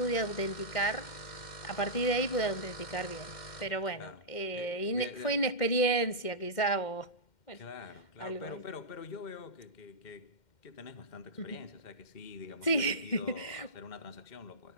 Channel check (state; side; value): late; right; 2.1 ms